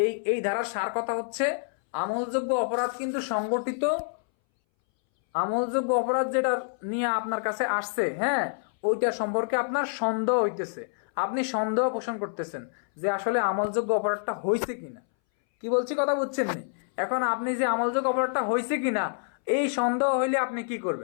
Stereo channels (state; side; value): silent; right; 60 dB below the other